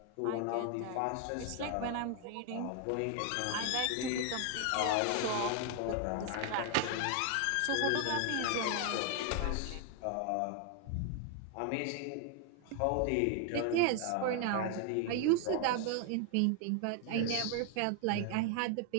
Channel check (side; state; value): both; different; correlation 0.00